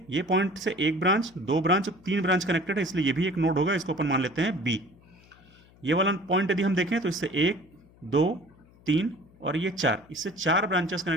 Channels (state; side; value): noise; left; hum, 27 dB below the sound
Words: ये पॉइंट से एक ब्रांच, 2 ब्रांच, 3 ब्रांच कनेक्टेड है, इसलिए ये भी एक नोड होगा, इसको अपन मान लेते हैं बी। ये वाला पॉइंट यदि हम देखें तो इससे 1, 2, 3 और ये 4, इससे 4 ब्रांचेस